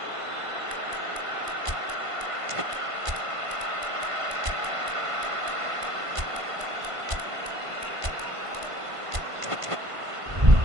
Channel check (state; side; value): late; left; 1.5 ms